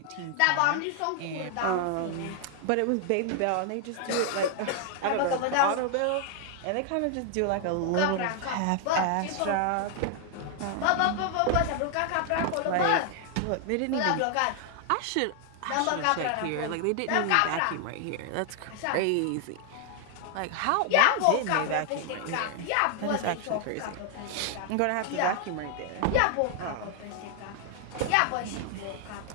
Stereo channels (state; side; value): different; both; correlation 0.00